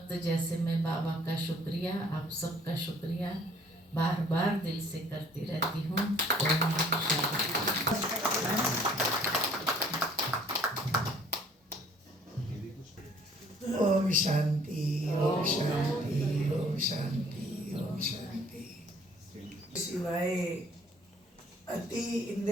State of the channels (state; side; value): normal; both; correlation 0.57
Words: जैसे मैं बाबा का शुक्रिया, आप सबका शुक्रिया बार बार दिल से करती रहती हूँ। ओम शांति, ओम शांति, ओम शांति, ओम शांति। सिवाय अति